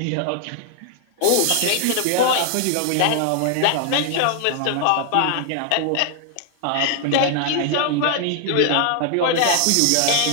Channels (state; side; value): different; both; correlation 0.00